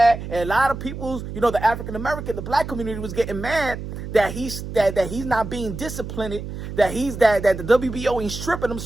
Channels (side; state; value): right; noise; hum, 8 dB below the sound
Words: and a lot of people, you know, the African American, the black community was getting mad that he's not being disciplined, that the WBO ain't stripping him.